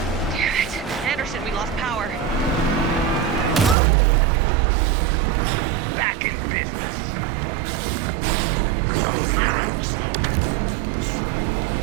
Damn it. Anderson, we lost power. Back in business.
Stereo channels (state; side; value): drops out; left; at 3.8 s